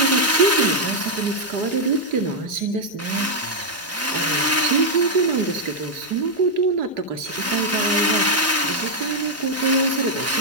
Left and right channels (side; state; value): both; normal; correlation -0.02